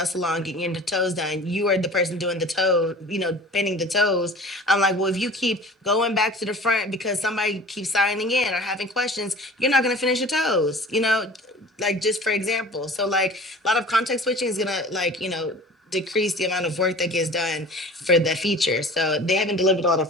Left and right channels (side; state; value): both; normal; correlation 0.42